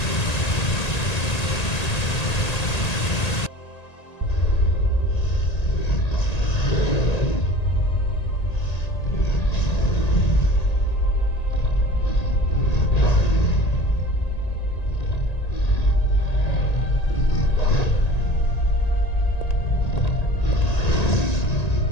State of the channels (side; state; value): right; late; 1.8 ms